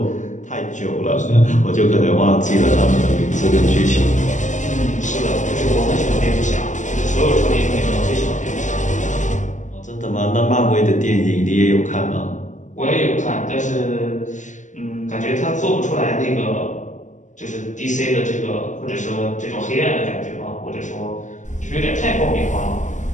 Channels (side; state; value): right; late; 0.36 ms